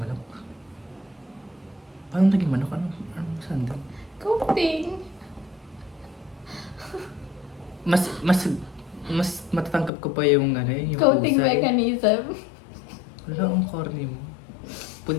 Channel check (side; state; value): right; drops out; at 9.9 s